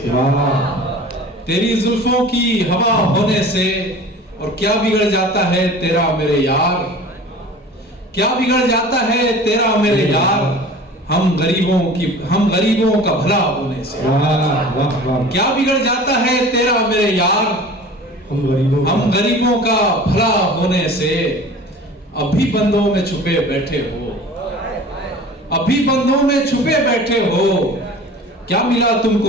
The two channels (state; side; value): normal; both; correlation 0.41